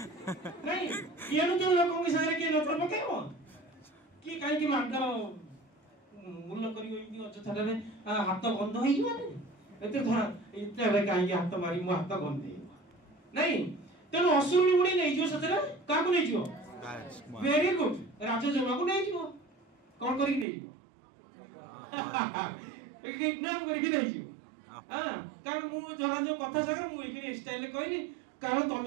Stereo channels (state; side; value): drops out; left; at 20.5 s